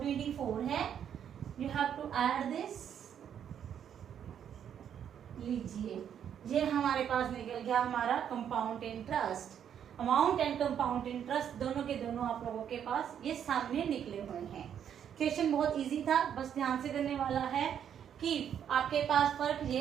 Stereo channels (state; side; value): quieter; left; 8.9 dB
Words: है। You have to add this. लीजिए, ये हमारे पास निकल गया हमारा compound interest. Amount and compound interest दोनों के दोनों आप लोगों के पास ये सामने निकले हुए हैं। क्वेश्चन बहुत इजी था, बस ध्यान से करने वाला है कि आपके पास फर्क